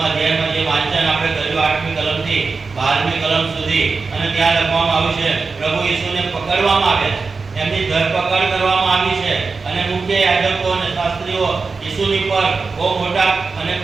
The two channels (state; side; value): quieter; left; 4.4 dB